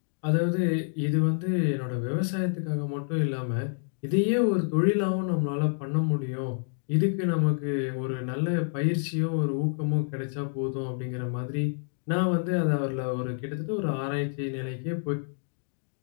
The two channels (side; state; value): right; silent; digital silence